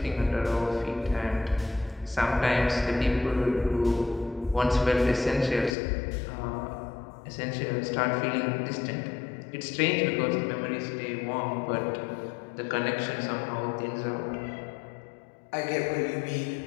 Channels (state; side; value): drops out; right; at 5.8 s